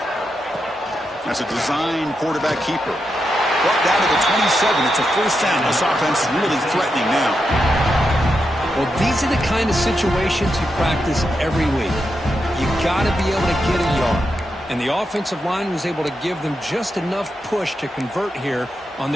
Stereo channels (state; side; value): normal; both; correlation 0.85